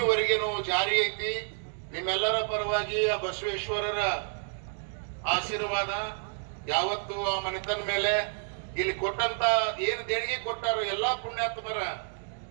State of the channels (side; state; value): left; silent; digital silence